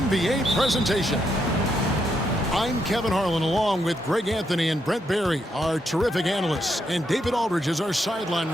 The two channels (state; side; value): normal; both; correlation 0.79